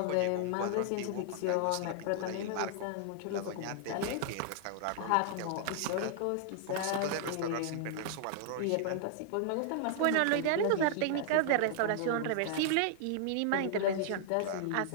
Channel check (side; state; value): both; different; correlation -0.01